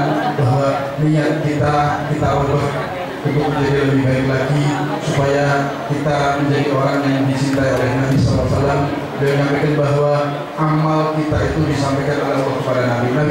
bahwa niat kita ubah untuk menjadi lebih baik lagi, supaya kita menjadi orang yang dicintai oleh Nabi SAW. Beliau menyampaikan bahwa amal kita itu disampaikan oleh Allah kepada Nabi.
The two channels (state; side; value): identical; both; correlation 1.00